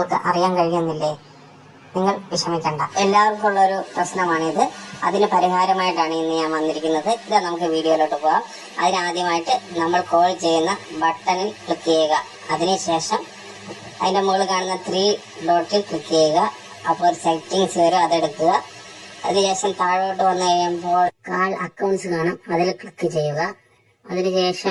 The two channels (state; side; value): identical; both; correlation 1.00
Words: അറിയാൻ കഴിയുന്നില്ലേ? നിങ്ങൾ വിഷമിക്കണ്ട. എല്ലാവർക്കും ഉള്ളൊരു പ്രശ്നമാണിത്. അതിന് പരിഹാരമായിട്ടാണ് ഇന്ന് ഞാൻ വന്നിരിക്കുന്നത്. ഇതാ, നമുക്ക് വീഡിയോയിലോട്ട് പോകാം. അതിനാദ്യമായിട്ട് നമ്മൾ കോൾ ചെയ്യുന്ന ബട്ടണിൽ ക്ലിക്ക് ചെയ്യുക. അതിനുശേഷം അതിന്റെ മുകളിൽ കാണുന്ന 3 ഡോട്ടിൽ ക്ലിക്ക് ചെയ്യുക. അപ്പോൾ ഒരു സെറ്റിങ്സ് വരും, അതെടുക്കുക. അതിനുശേഷം താഴോട്ട് വന്നു കഴിയുമ്പോൾ കാൾ അക്കൗണ്ട്സ് കാണും, അതിൽ ക്ലിക്ക് ചെയ്യുക.